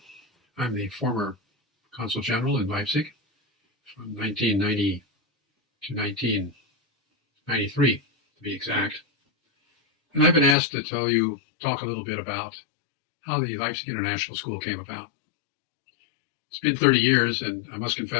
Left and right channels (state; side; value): drops out; right; at 10.6 s